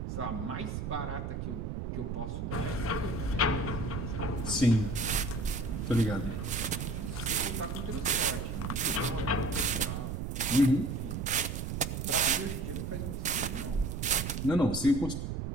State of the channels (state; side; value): noise; right; rumble, 4 dB below the sound